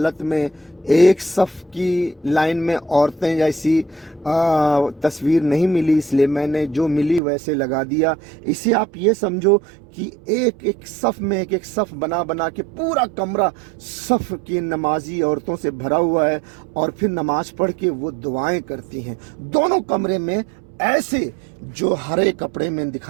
में एक सफ की लाइन में औरतें जैसी तस्वीर नहीं मिली, इसलिए मैंने जो मिली वैसे लगा दिया। इसे आप ये समझो कि एक एक सफ में एक एक सफ बना बना के पूरा कमरा सफ की नमाजी औरतों से भरा हुआ है और फिर नमाज पढ़ के वो दुआएं करती हैं। दोनों कमरे में ऐसे जो हरे कपड़े में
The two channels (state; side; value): drops out; left; at 7.2 s